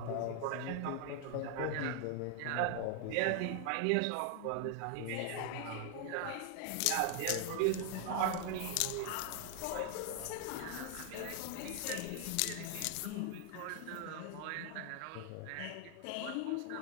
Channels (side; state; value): both; different; correlation 0.00